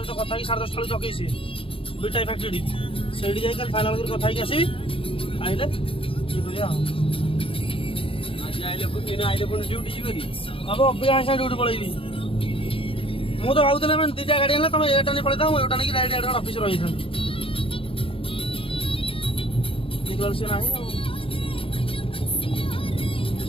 तो कथा 10:30 जगे सी दुईटा फैक्ट्री से जाए फाइनाल कर कथा आसबि आइले ड्यूटी जी हम अभी ड्यूटी पलैबी मुझे भावुली मैंने दीटा गाड़ी है तुम एटा नहीं पलता एटा नहीं डायरेक्ट ऑफिस रही था देखल से ना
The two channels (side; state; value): right; late; 0.26 ms